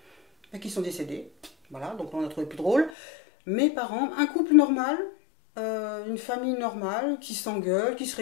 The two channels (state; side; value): drops out; right; at 2.9 s